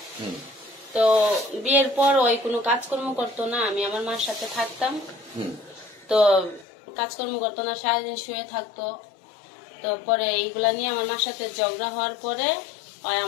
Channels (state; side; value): drops out; right; at 6.7 s